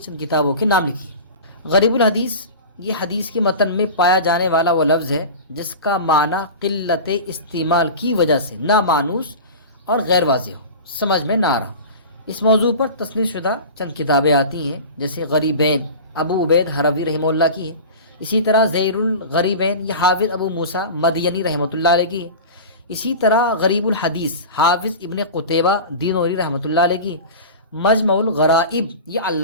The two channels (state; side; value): inverted; both; correlation -0.33